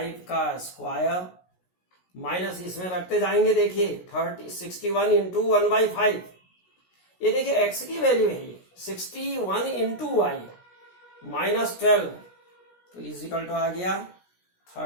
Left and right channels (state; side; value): late; right; 16 ms